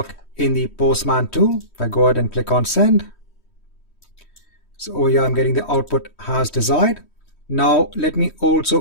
in the Postman tool. If I go ahead and click on send. So over here, I'm getting the output as desired. Now let me also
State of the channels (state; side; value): late; right; 3.1 ms